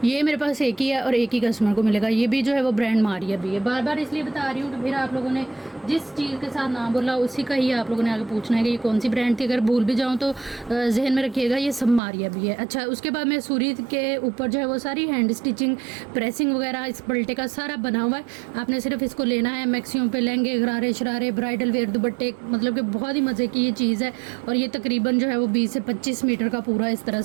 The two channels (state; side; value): drops out; left; at 12.0 s